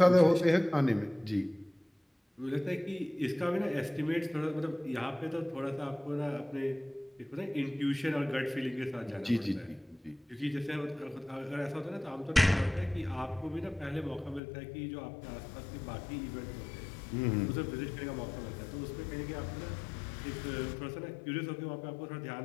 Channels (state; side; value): drops out; right; at 14.4 s